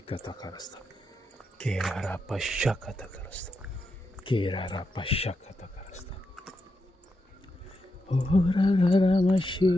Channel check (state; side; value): normal; both; correlation 0.85